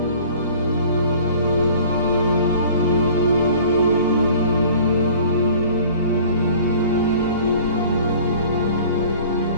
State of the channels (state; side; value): inverted; both; correlation -0.47